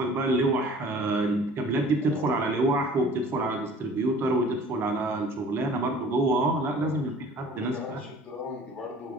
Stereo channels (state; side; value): normal; both; correlation 0.48